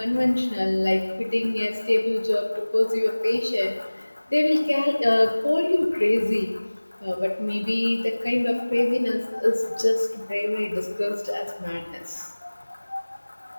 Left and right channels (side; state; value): both; inverted; correlation -1.00